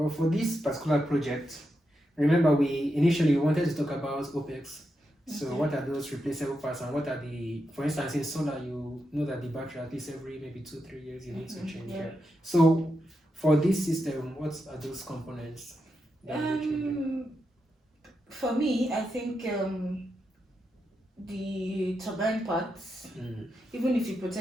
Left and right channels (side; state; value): both; normal; correlation 0.86